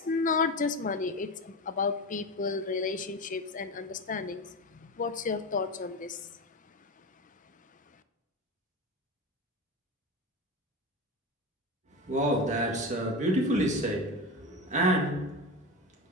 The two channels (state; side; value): normal; both; correlation 0.23